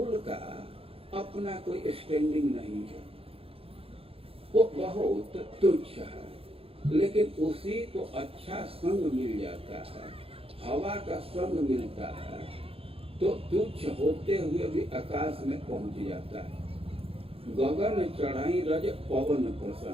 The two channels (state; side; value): late; left; 0.27 ms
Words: का अपना कोई स्टैंडिंग नहीं है, वो बहुत तुच्छ है। लेकिन उसी को अच्छा संग मिल जाता है, हवा का संग मिलता है तो तुच्छ होते हुए भी आकाश में पहुंच जाता है। गगन चढ़ाई रज पवन